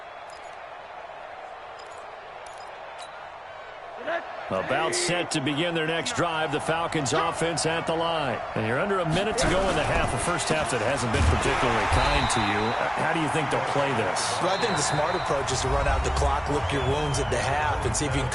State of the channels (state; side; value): identical; both; correlation 1.00